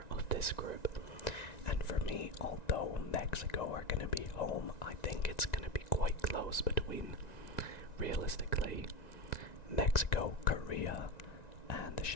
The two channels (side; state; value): right; late; 1.9 ms